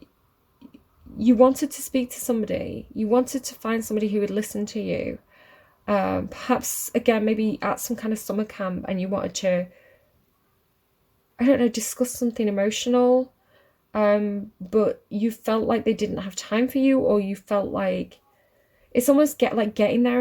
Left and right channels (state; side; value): identical; both; correlation 1.00